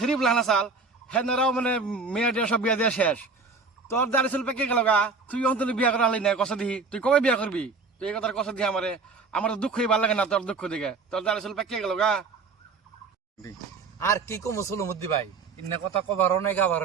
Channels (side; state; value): left; quieter; 4.4 dB